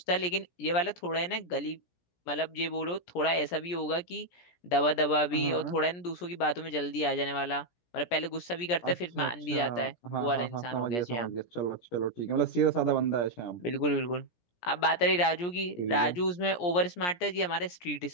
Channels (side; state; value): right; late; 17 ms